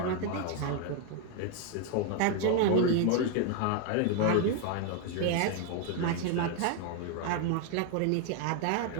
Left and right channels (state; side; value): different; both; correlation 0.01